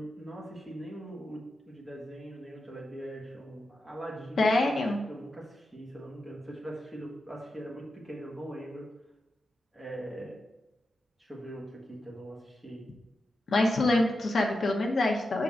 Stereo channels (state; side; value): normal; both; correlation 0.89